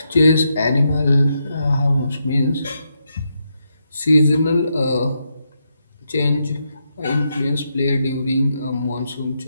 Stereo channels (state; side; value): inverted; both; correlation -0.82